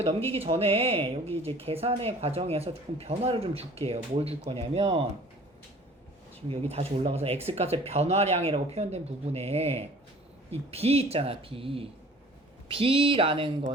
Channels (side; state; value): both; normal; correlation 0.49